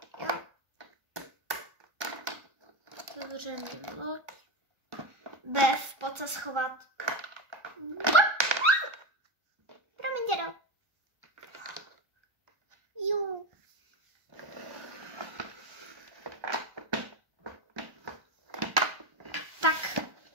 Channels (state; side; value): late; left; 1.3 ms